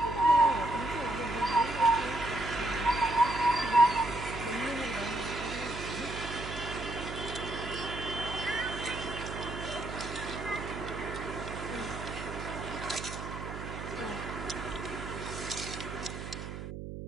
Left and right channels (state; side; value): noise; right; hum, 8 dB below the sound